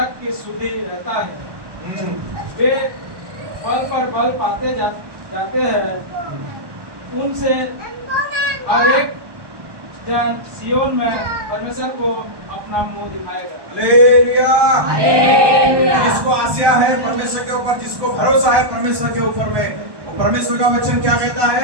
की सुधि रहता है। वे बल पर बल पाते जाते हैं। उनसे हर एक जन सियोन में परमेश्वर को अपना मुंह दिखाएगा। Hallelujah, hallelujah. जिसको आशा है परमेश्वर के ऊपर, जिसको भरोसा है परमेश्वर के ऊपर में, वो परमेश्वर का वचन क्या कहता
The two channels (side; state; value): left; late; 1.2 ms